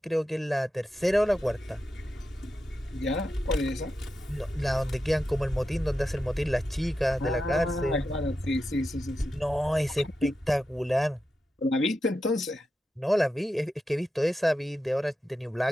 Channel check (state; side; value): normal; both; correlation 0.90